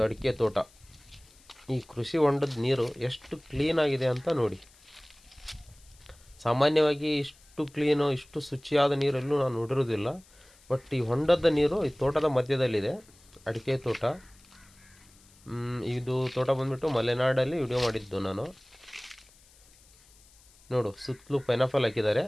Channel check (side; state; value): left; noise; hiss, 27 dB below the sound